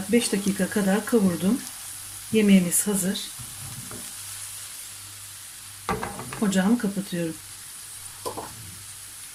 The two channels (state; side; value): identical; both; correlation 1.00